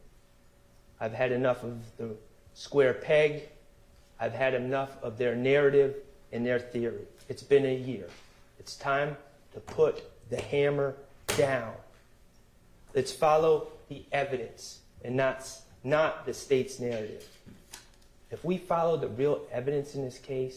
I've had enough of the square peg. I've had enough of their narrative and their theory. It's been a year. It's time to put the hammer down. Let's follow the evidence and not the state's narrative. If we follow the real evidence in this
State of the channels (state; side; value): identical; both; correlation 1.00